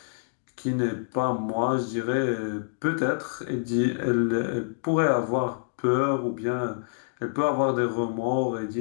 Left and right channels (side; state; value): right; silent; digital silence